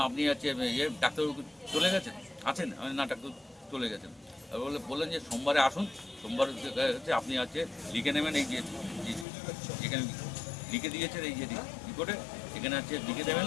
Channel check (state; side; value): drops out; right; at 9.2 s